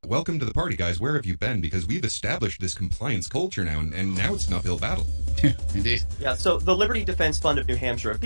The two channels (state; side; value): inverted; both; correlation -1.00